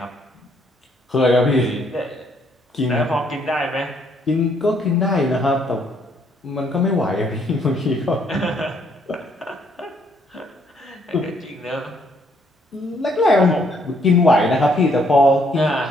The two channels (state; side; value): normal; both; correlation 0.68